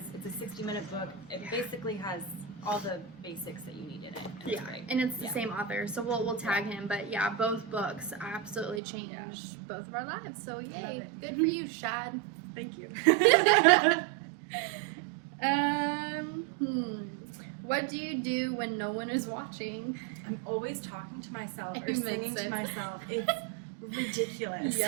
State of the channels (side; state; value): left; drops out; at 8.8 s